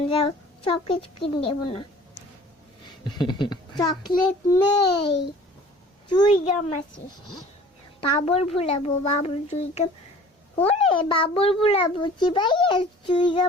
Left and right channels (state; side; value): normal; both; correlation 0.47